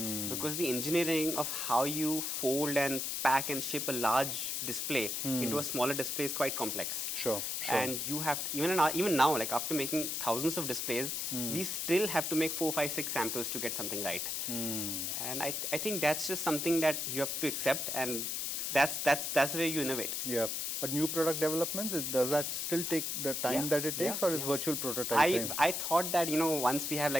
Because the engineering of how you fold and pack and ship a large display into a smaller display is quite complex. Sure. And you have to, even now, like after making thousands of displays, we still have to make 4, 5, 6 samples to get something right. And I think that's just something that you have to accept, and that's the way you innovate. Yeah. But new product developments, does that still take the time that it takes, or is virtual prototyping? I thought that, once we have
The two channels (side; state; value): left; noise; hiss, 1 dB below the sound